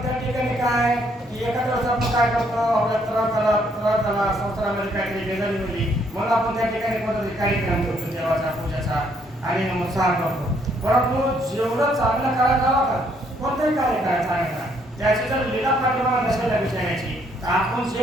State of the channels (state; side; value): normal; both; correlation 0.69